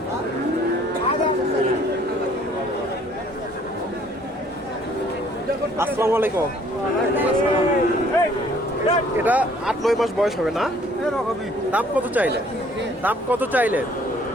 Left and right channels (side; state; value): both; normal; correlation 0.59